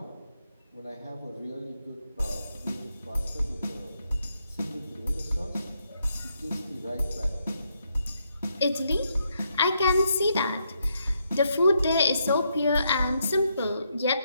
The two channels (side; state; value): both; inverted; correlation -0.78